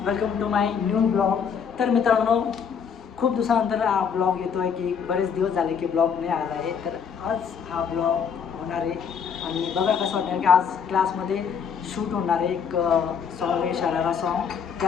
welcome to my new blog. तर मित्रांनो, खूप दिवसानंतर हा ब्लॉग येतो आहे की बरेच दिवस झाले की ब्लॉग नाही आला आहे. तर आज हा ब्लॉग होणार आहे आणि बघा कसं वाटतं की आज क्लासमध्ये शूट होणार आहे एक सॉन्ग आहे, शरारा सॉन्ग.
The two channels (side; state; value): right; quieter; 6.9 dB